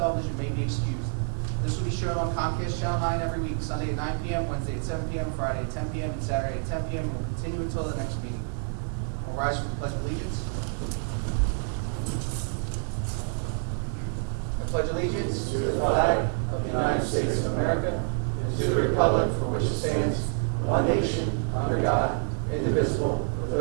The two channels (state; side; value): silent; left; 60 dB below the other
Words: may be excused. This will be shown on Comcast Channel 9 every week, Sunday at 9 p.m., Wednesday at 7 p.m., Friday at 10 p.m., and Saturday at 10 p.m., and will continue until the next meeting. We'll rise for the Pledge of Allegiance. I pledge allegiance to the flag of the United States of America and to the republic for which it stands, one nation, under God, indivisible, with